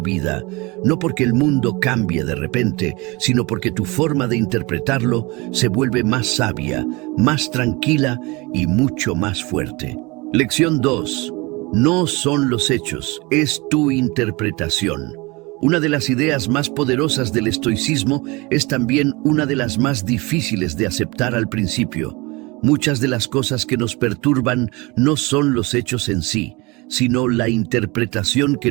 no porque el mundo cambie de repente, sino porque tu forma de interpretarlo se vuelve más sabia, más tranquila y mucho más fuerte. Lección 2. No son los hechos, es tu interpretación. Una de las ideas más poderosas del estoicismo es también una de las más difíciles de aceptar al principio. Muchas de las cosas que nos perturban no son los hechos en sí, sino la interpretación que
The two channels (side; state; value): left; quieter; 25.0 dB